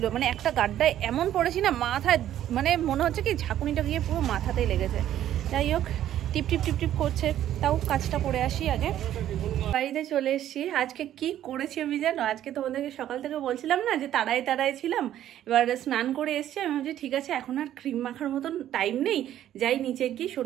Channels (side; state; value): left; quieter; 11.8 dB